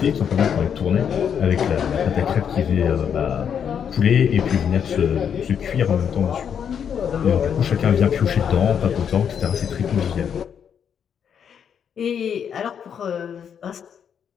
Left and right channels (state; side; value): quieter; right; 7.9 dB